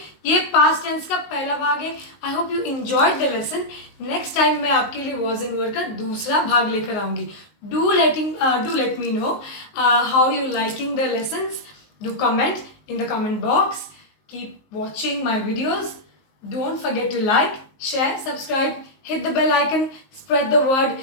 ये पास्ट टेंस का पहला भाग है। आई hope you enjoyed the lesson. Next time मैं आपके लिए वॉज एंड वर का दूसरा भाग लेकर आऊंगी। Do let me know how you liking the lessons. Do comment in the comment box. Keep watching my videos. Don't forget to like, share, subscribe, hit the bell icon, spread the word,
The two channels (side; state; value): right; late; 19 ms